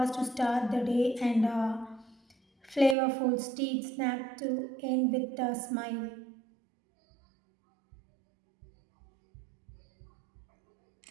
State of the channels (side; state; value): left; drops out; at 3.0 s